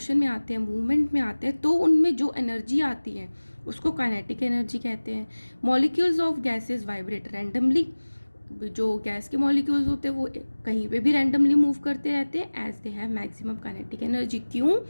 में आते हैं, मूवमेंट में आते हैं, तो उनमें जो एनर्जी आती है उसको काइनेटिक एनर्जी कहते हैं। Molecules of gases vibrate randomly, जो गैस के मॉलिक्यूल्स होते हैं वो कहीं पे भी रैंडमली मूव करते रहते हैं as they have maximum kinetic energy. क्यों?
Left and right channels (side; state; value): both; inverted; correlation -1.00